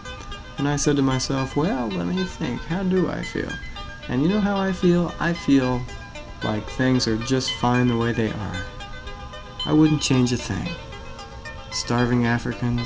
And I said to myself, well, let me think. How do I feel? And you know how I feel? I feel like things are just fine the way they are. I wouldn't change a thing. Starving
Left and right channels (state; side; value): identical; both; correlation 1.00